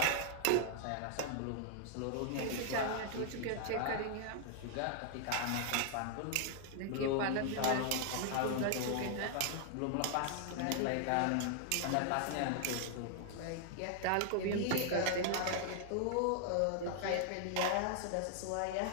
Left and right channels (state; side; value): different; both; correlation 0.00